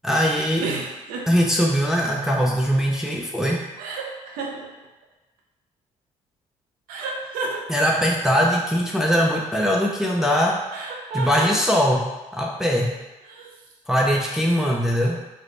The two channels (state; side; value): normal; both; correlation 0.70